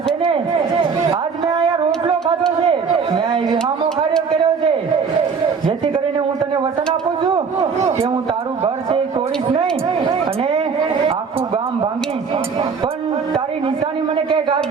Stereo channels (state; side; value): quieter; left; 5.6 dB